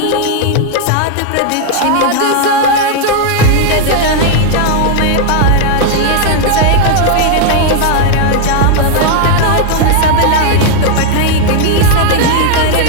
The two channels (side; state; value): both; different; correlation 0.00